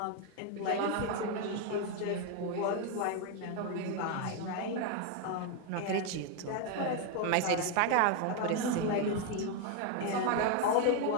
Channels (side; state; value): both; different; correlation 0.01